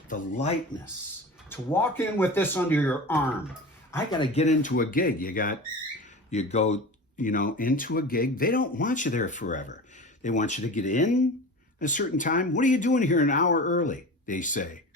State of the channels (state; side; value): normal; both; correlation 0.32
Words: The lightness. To walk in with this under your arm. I got to get into a gig. You go, into a gig. They don't want you there forever. They want you to get in a certain time. What are you doing here an hour early? They say.